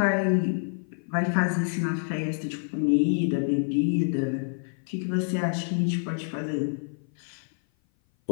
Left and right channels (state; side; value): silent; right; 56 dB below the other